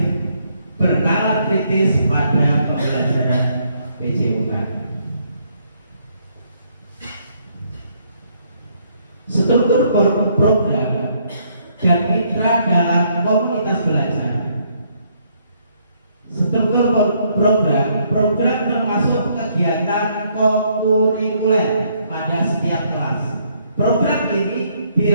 bernalar kritis pada pembelajaran PJOK. Struktur program dan mitra dalam komunitas belajar. Struktur program termasuk kegiatan kokurikuler pada setiap kelas. Program ini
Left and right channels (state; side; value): inverted; both; correlation -0.70